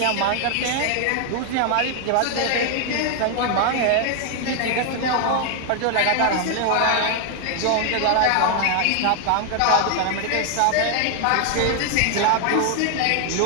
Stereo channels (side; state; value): both; different; correlation 0.00